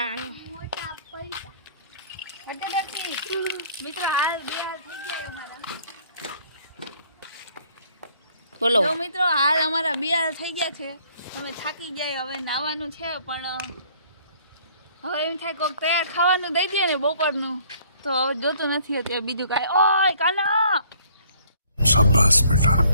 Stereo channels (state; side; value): inverted; both; correlation -0.59